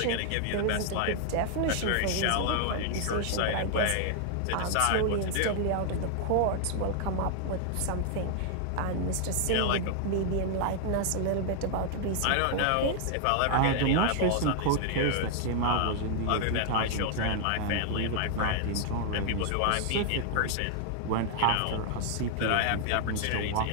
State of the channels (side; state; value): both; different; correlation 0.00